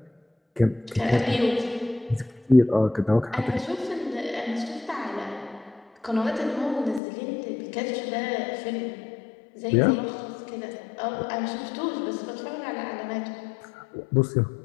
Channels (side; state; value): right; drops out; at 7.0 s